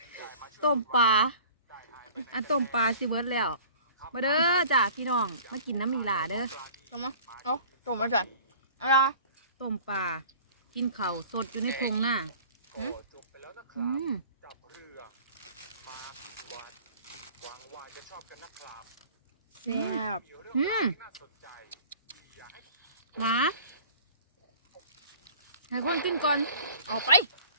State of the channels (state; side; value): inverted; both; correlation -0.46